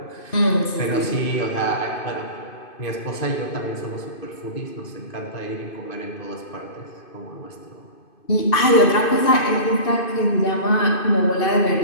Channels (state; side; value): late; right; 2.5 ms